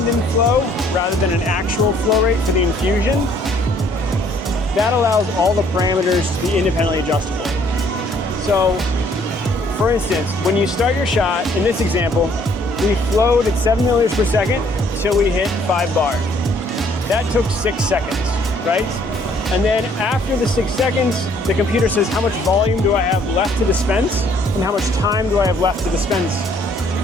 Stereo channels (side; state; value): both; normal; correlation 0.62